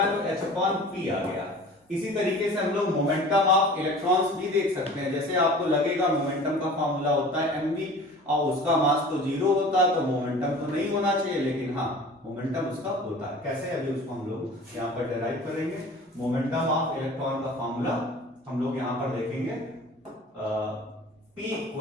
तो h/p आ गया। इसी तरीके से हम लोग मोमेंटम ऑफ इलेक्ट्रॉन्स भी देख सकते हैं। जैसे आपको लगेगा मोमेंटम का फार्मूला होता है mv और उसका मास तो 0 होता है, तो मोमेंटम तो नहीं होना चाहिए, लेकिन हाँ मोमेंटम उसका होता है। कैसे? अभी उसको हम लोग यहाँ पर डेराइव करेंगे। मोमेंटम ऑफ इलेक्ट्रॉन का फार्मूला हम लोग यहाँ पर देखेंगे, P =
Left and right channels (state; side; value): normal; both; correlation 0.43